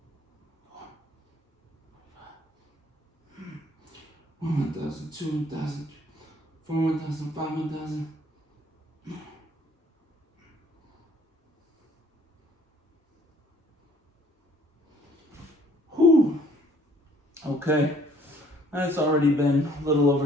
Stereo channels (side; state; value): both; normal; correlation 0.59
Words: 1,000, 2,000, 4,000, 5,000. Whew. Okay, that's already been a little